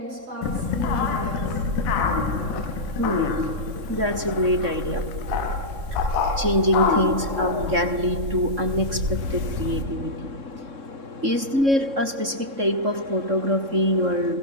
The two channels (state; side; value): late; left; 3.6 ms